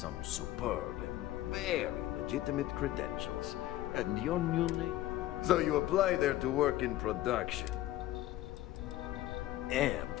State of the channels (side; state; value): right; quieter; 15.2 dB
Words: superb and very legitimate credentials. And your new name? So you apply there to work in production. Amp